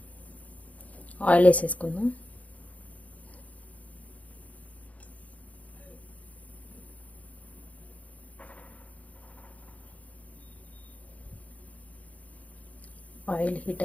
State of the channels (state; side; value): late; right; 0.069 ms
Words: ఆయిల్ వేసేసుకుందాం. ఆయిల్ హీట్